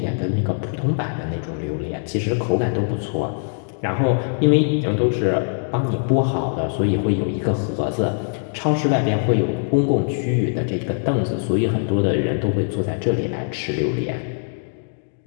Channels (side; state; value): right; silent; digital silence